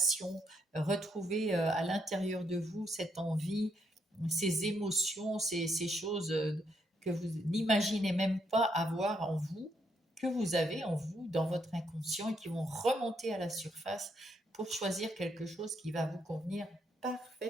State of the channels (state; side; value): normal; both; correlation 0.76